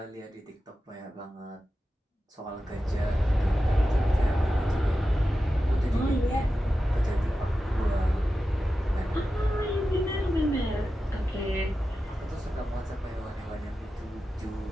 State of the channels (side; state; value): both; normal; correlation 0.92